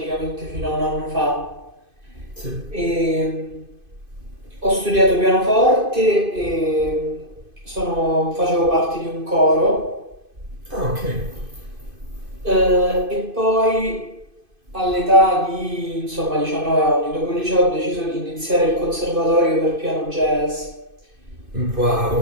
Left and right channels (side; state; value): left; late; 2.5 ms